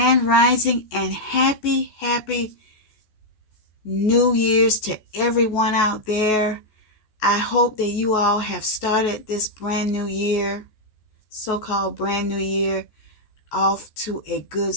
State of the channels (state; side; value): late; right; 14 ms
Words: Rising and happy New Year's to everyone out there. I hope that you all have started this brand new year, so-called brand new year, off to a good